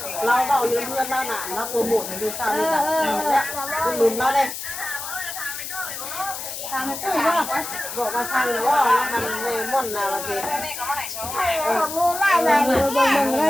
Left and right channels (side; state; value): left; noise; hiss, 7 dB below the sound